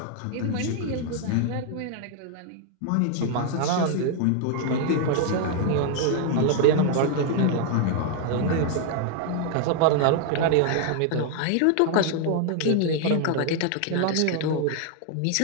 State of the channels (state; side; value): different; both; correlation 0.00